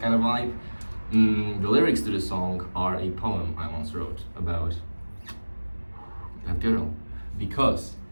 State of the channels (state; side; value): inverted; both; correlation -1.00